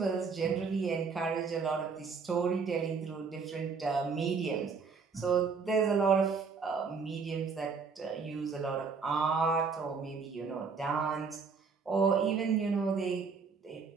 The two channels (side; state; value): left; quieter; 5.2 dB